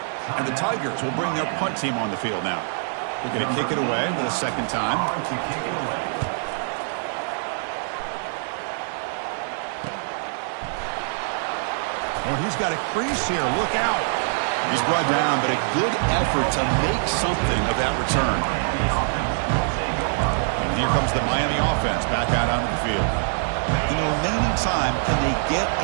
And the Tigers will bring their punt team on the field now. They're going to kick it away for the second time. Oh, he's got a crease here. Look out. He's brought down, but a good effort to make something of that return. And here comes the Miami offense back out onto the field. In the remaining time, can they get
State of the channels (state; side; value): silent; left; digital silence